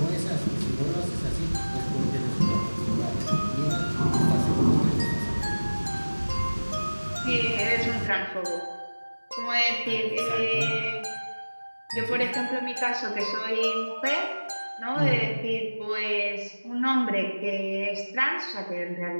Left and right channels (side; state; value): both; inverted; correlation -1.00